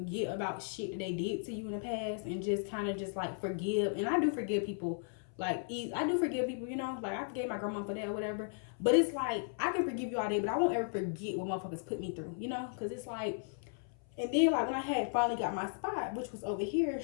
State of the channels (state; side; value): silent; right; 54 dB below the other